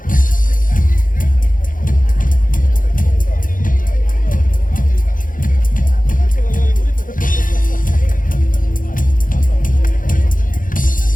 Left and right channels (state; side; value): late; right; 0.39 ms